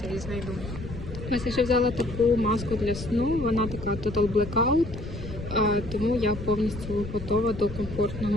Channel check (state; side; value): noise; left; rumble, 10 dB below the sound